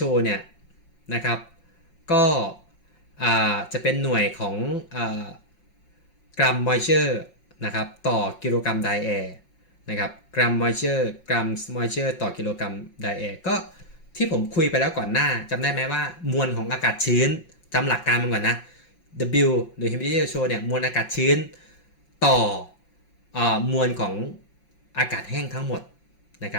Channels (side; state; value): right; late; 5.5 ms